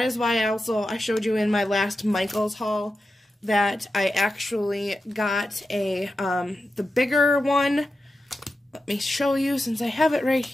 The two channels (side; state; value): both; normal; correlation 0.90